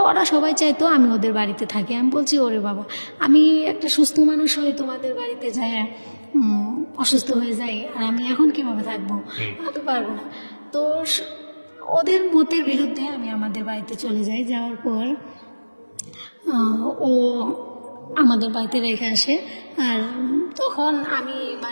ওরা সবাই চাইতো আমি ওদের বাড়িতে থাকি। আমি বলছি ওরে বাবা, আমি একটা সুস্থ মানুষ হয়ে তোমাদের বাড়িতে যাই, অসুস্থ হয়ে যাই, আর আমি এখন কিভাবে থাকবো? আমি পারবো না। তো ওদের মতের বিরুদ্ধে আমি আমাদের বাড়িতে চলে যাই। যাওয়ার পর ও আমাদের বাড়িতে রেখে আসে। আর তখন আমি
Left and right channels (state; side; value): inverted; both; correlation -1.00